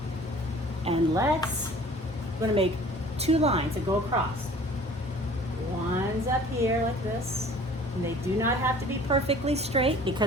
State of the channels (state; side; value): normal; both; correlation 0.49